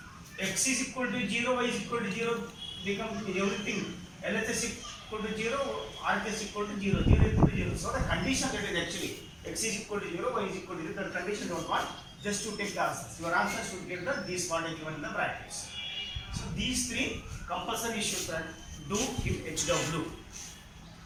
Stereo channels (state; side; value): identical; both; correlation 1.00